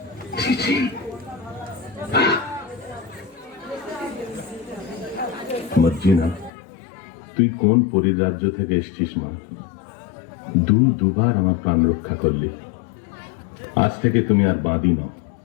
ছি ছি। মর্জিনা, তুই কোন পরিরাজ্য থেকে এসছিস মা? দুবার আমার প্রাণ রক্ষা করলি। আজ থেকে তুমি আর বাঁধি নাও।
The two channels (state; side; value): drops out; right; at 6.5 s